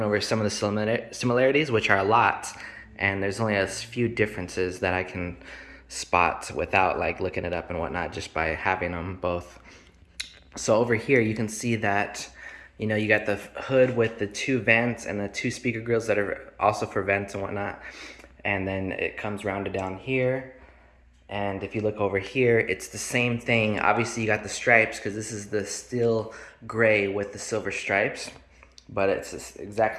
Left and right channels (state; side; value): identical; both; correlation 1.00